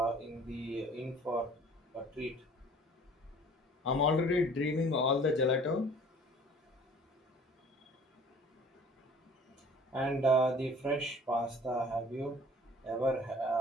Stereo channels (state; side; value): normal; both; correlation 0.50